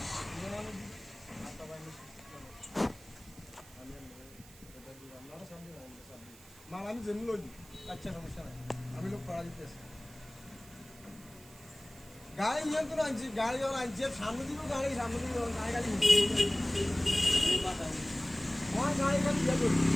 মাল আমি জেনে লই আচ্ছা সমস্যা নাই আমি লোক পড়া দিতেছি গাড়ি নিয়ন্ত্রণ আনছি গাড়ি যখন আনছি সামনে দিব গাড়ি গাড়ি আমার গাড়ি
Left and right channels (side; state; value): right; noise; hiss, 21 dB below the sound